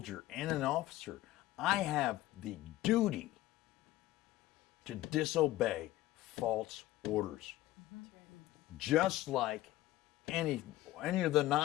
and an officer, I have the duty to disobey false orders. Just like any of the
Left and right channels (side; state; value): right; quieter; 15.9 dB